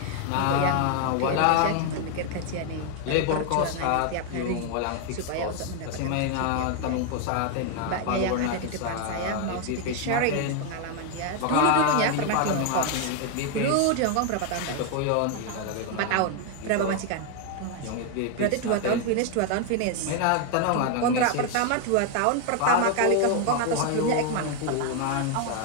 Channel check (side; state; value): both; different; correlation 0.00